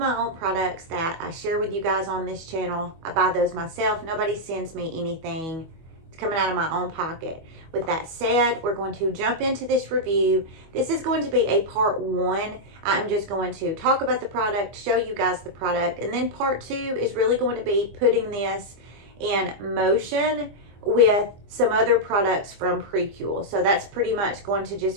own products that I share with you guys on this channel. I buy those myself. Nobody sends me anything. It's coming out of my own pocket. With that said, we're going to jump into this review. This is going to be a part one. I'm just going to talk about the product, show you guys the product, and then part two is really going to be putting this in motion with some other products from Prequel. So that's pretty much going to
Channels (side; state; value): left; late; 25 ms